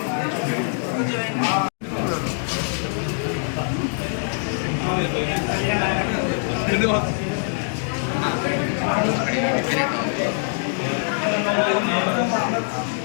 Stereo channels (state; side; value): silent; right; 63 dB below the other